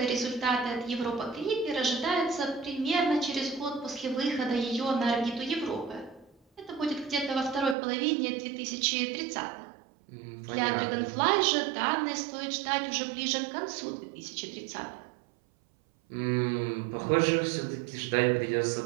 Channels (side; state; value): left; drops out; at 7.8 s